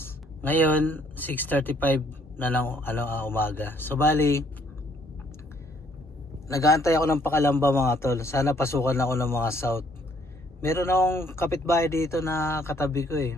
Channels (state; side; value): normal; both; correlation 0.65